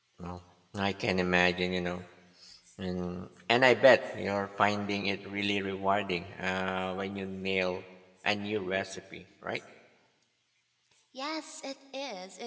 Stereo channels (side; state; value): both; identical; correlation 1.00